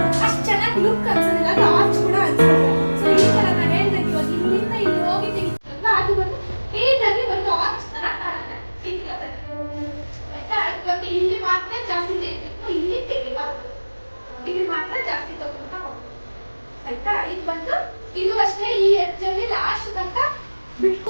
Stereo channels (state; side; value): inverted; both; correlation -1.00